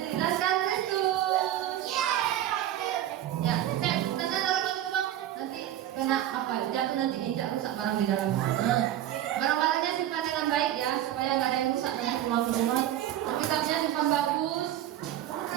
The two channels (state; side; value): quieter; left; 12.2 dB